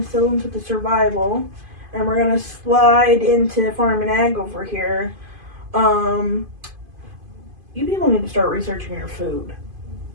with the survival, and we're going to slide into farm and ag over here, you people need to start researching your food.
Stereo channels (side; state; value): left; late; 2.5 ms